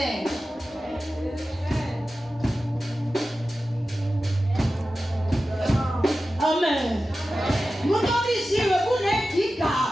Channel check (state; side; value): normal; both; correlation 0.94